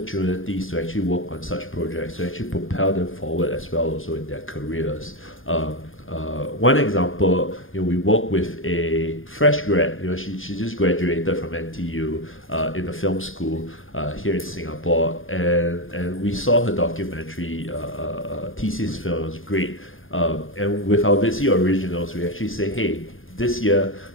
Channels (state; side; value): late; right; 0.59 ms